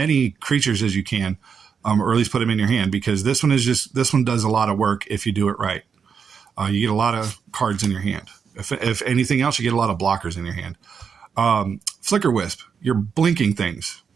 creatures as you can, or at least put them in your hand, because this one does a lot of work if you do it right. You get a lot of cards in your hand. If anything else, you get a lot of blockers in your hand. Flicker Wisp. You're blinking things.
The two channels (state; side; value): quieter; left; 6.5 dB